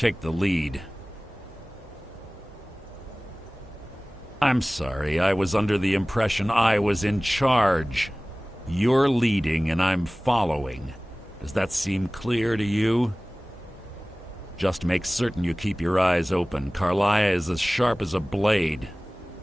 the lead. I'm sorry, I was under the impression I was in charge. You're leading and I'm following. Does that seem clear to you? Just make certain you keep your eyes open. Karliah is as sharp as a blade.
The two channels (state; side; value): normal; both; correlation 0.98